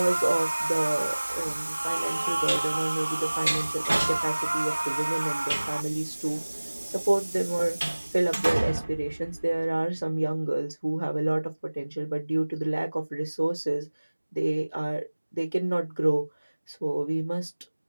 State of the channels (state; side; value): inverted; both; correlation -1.00